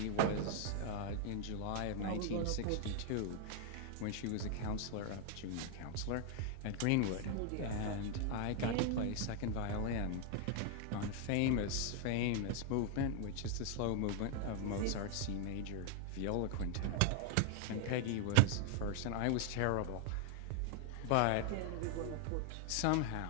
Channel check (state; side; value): different; both; correlation 0.00